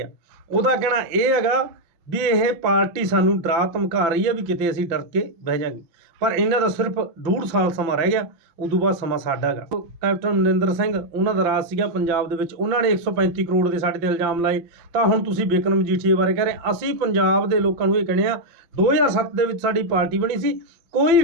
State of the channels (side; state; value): left; late; 5.8 ms